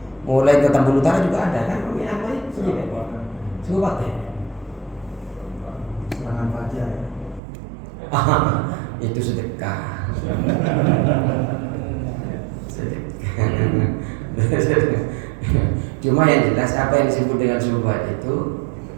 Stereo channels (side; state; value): left; drops out; at 7.4 s